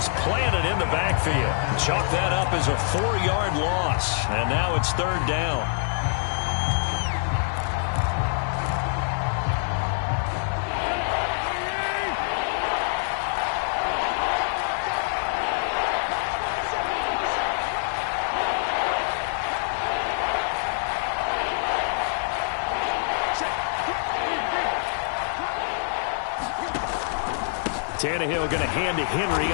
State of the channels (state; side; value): silent; right; digital silence